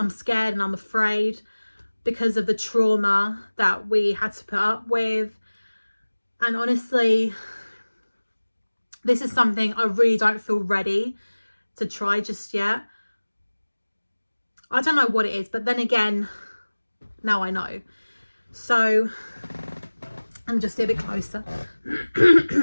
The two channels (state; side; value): inverted; both; correlation -1.00